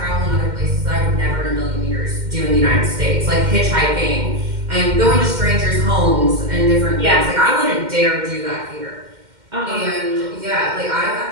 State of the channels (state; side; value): late; left; 2.1 ms